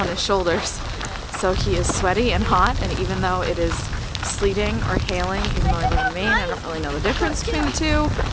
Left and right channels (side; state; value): both; identical; correlation 1.00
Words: his shoulders. So he is sweaty and hot, and even though it is sleeting or hailing, even though I live in Maine, I don't really know the difference between the two.